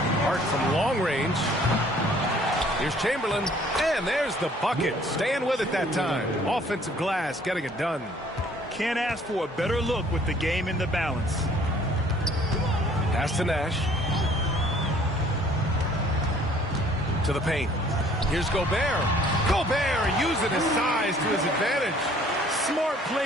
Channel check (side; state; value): both; normal; correlation 0.57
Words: Hart from long range. Here's Chamberlain, and there's the bucket. Staying with it that time. Offensive glass, getting it done. Can't ask for a better look with the game in the balance. Pass to Nash. To the paint. Here's Gobert. Gobert using his size to his advantage. Smart